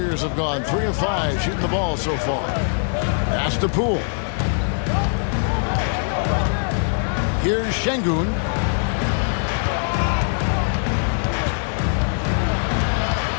have gone 3 of 5 shooting the ball so far. Pass to Poole. Here's Şengün.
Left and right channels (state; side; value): silent; right; digital silence